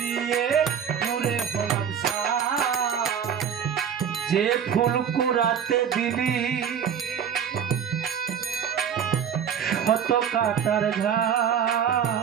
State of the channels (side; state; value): left; quieter; 8.0 dB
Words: পুরে হলাম ছাই যে ফুল কোরাতে দিলি শত কাটার